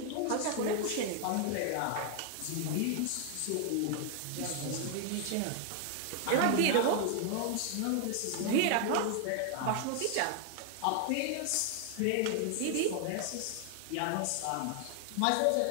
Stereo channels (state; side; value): different; both; correlation 0.00